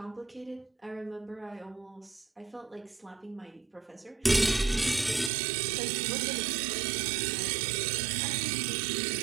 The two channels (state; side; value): drops out; left; at 5.3 s